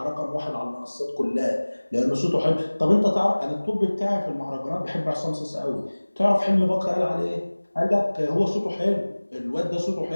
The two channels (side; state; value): both; inverted; correlation -1.00